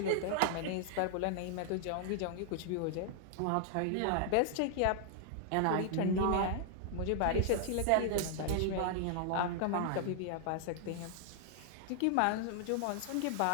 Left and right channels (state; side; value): different; both; correlation 0.00